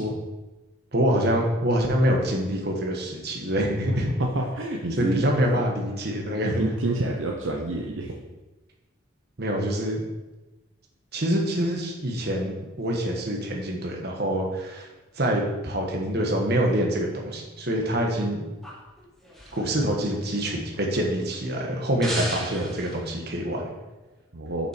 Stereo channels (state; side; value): normal; both; correlation 0.50